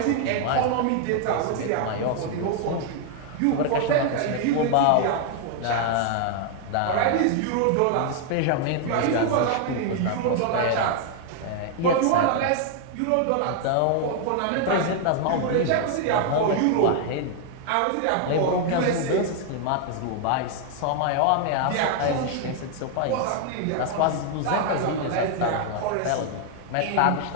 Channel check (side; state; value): both; different; correlation 0.00